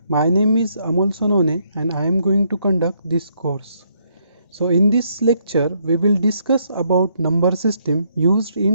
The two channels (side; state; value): both; inverted; correlation -0.72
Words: My name is Amol Sonone and I am going to conduct this course. So in this lecture we will discuss about number system used